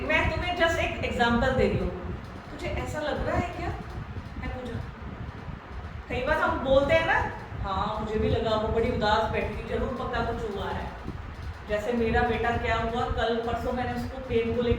मैं तुम्हें जस्ट एक एग्जांपल दे रही हूँ, तुझे ऐसा लग रहा है क्या, है पूजा। कई बार हम बोलते हैं ना, हाँ मुझे भी लगा वो बड़ी उदास बैठी, जरूर पक्का कुछ हुआ है। जैसे मेरा बेटा क्या हुआ, कल परसों मैंने उसको पेन को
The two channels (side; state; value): both; identical; correlation 1.00